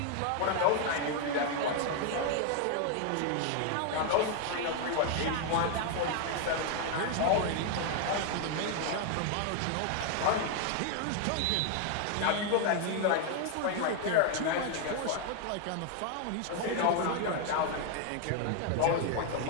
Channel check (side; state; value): both; different; correlation 0.00